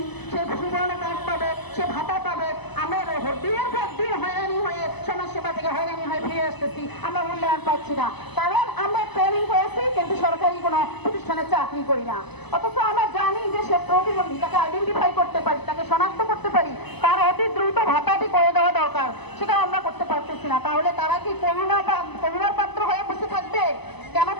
সে সুবর্ণ কার্ড পাবে, সে ভাতা পাবে। আমরা দিনের পর দিন হয়রানি হয়ে সমাজসেবা থেকে হয়রানি হয়ে ফিরে আসতেছি, আমরা মূল্যায়ন পাচ্ছি না। কারণ আমরা ট্রেনিং করেছি কিন্তু সরকারি কোনো প্রতিষ্ঠানে চাকরি করি না। অথচ আমরা জানি যে সে প্রতিবন্ধী, তাকে আইডেন্টিফাই করতে পারি, তাকে শনাক্ত করতে পারি, তার অতি দ্রুত ভাতাটি করে দেওয়া দরকার, সেটা আমরা করতে পারতেছি না। তাহলে তারা কি করুণার পাত্র হয়ে বসে থাকবে? কেন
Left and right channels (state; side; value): late; right; 0.99 ms